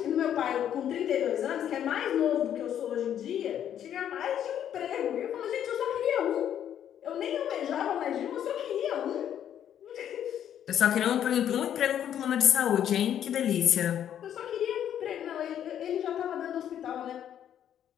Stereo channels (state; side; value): quieter; right; 10.0 dB